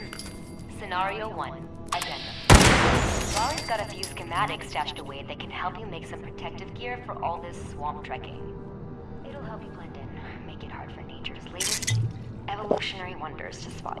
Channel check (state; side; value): identical; both; correlation 1.00